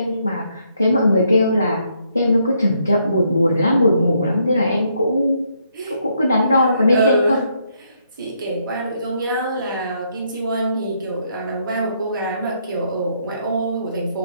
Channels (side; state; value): both; inverted; correlation -0.73